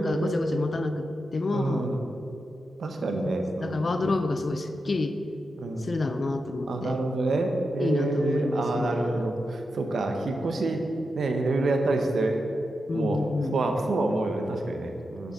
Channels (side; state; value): both; normal; correlation 0.88